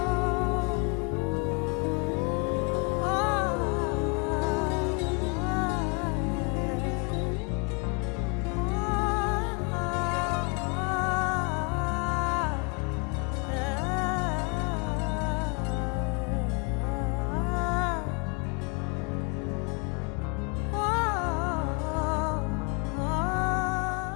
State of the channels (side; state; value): right; quieter; 34.8 dB